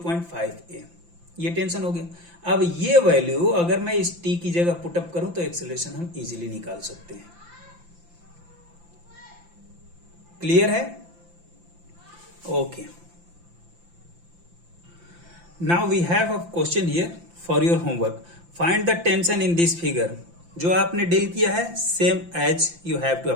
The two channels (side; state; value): left; late; 5.8 ms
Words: ये टेंशन हो गया। अब ये वैल्यू अगर मैं इस t की जगह पुटअप करूं तो एक्सेलरेशन हम इजीली निकाल सकते हैं। क्लियर है? Okay, now we have a question here for your homework. Find the tension in this figure. जो आपने डील किया है same as you have to